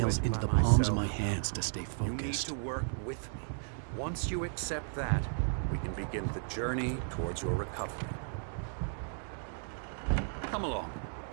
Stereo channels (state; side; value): silent; left; digital silence